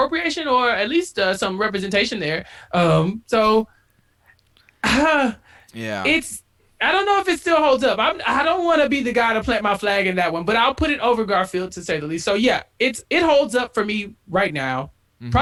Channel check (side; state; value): both; identical; correlation 1.00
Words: or at least some representation there. So Yeah. it's I don't know if it still holds up. I don't want to be the guy to plant my flag in that one, but I'll put it over Garfield to say the least. So yeah, it holds up for me right now.